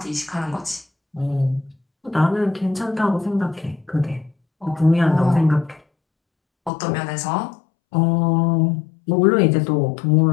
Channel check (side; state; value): right; drops out; at 6.7 s